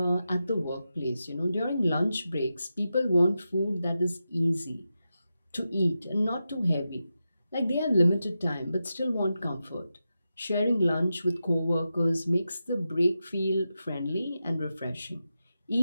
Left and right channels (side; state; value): both; inverted; correlation -0.90